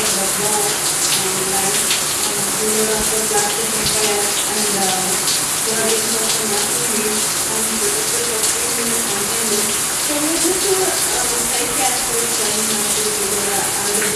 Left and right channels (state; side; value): identical; both; correlation 1.00